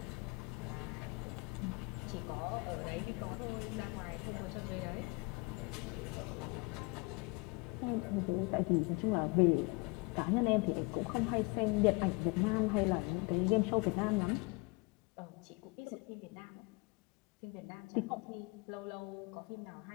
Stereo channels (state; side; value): quieter; right; 28.0 dB